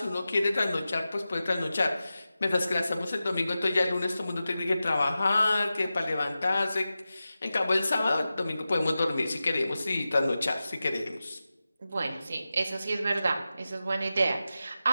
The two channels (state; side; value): inverted; both; correlation -0.93